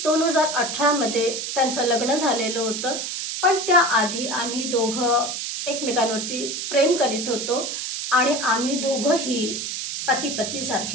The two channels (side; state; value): right; noise; hiss, 4 dB below the sound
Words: 2018मध्ये त्यांचं लग्न झालेलं होतं, पण त्याआधी आम्ही दोघं एकमेकांवरती प्रेम करीत होतो आणि आम्ही दोघंही पती